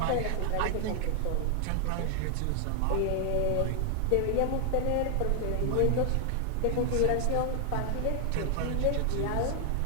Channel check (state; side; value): different; both; correlation 0.00